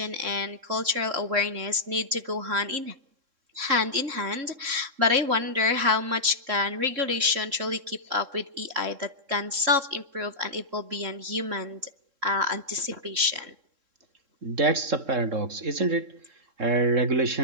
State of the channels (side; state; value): left; late; 3.7 ms